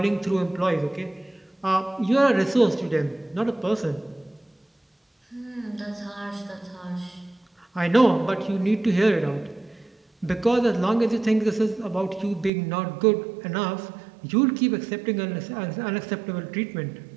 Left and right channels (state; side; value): drops out; left; at 12.5 s